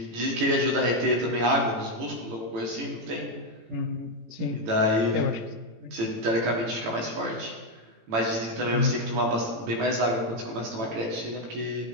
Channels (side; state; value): left; late; 18 ms